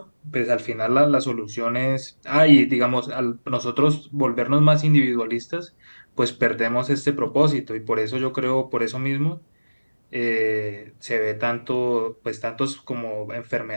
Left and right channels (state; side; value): inverted; both; correlation -1.00